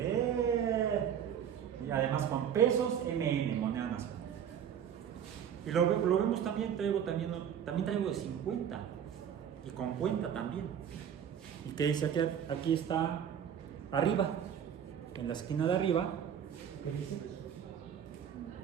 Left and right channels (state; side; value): quieter; left; 8.8 dB